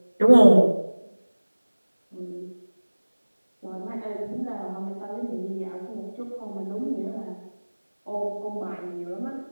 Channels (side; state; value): both; inverted; correlation -1.00